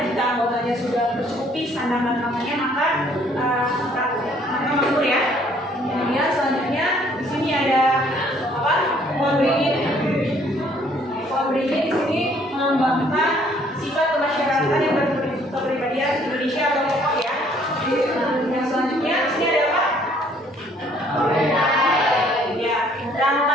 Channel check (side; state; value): both; normal; correlation 0.62